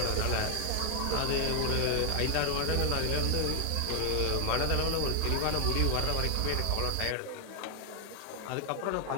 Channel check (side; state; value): both; different; correlation 0.00